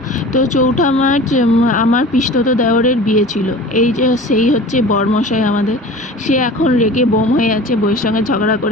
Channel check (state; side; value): normal; both; correlation 0.39